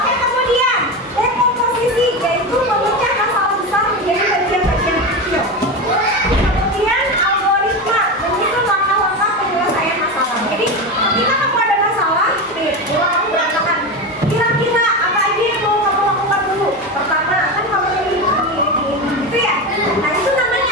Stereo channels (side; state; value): both; normal; correlation 0.19